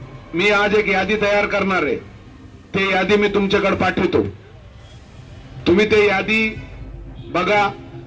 मी आज एक यादी तयार करणार आहे. ते यादी मी तुमच्याकडे पाठवतो. तुम्ही ते यादी बघा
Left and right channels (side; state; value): both; identical; correlation 1.00